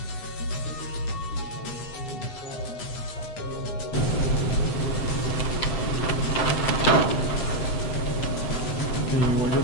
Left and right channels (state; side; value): late; right; 7.7 ms